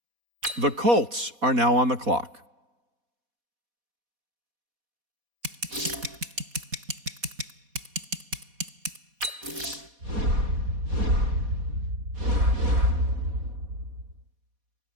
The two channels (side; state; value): left; late; 4.1 ms